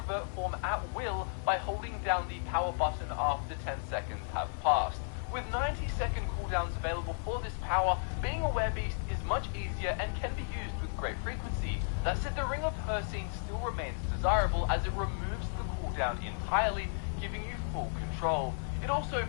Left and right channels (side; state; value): right; silent; 55 dB below the other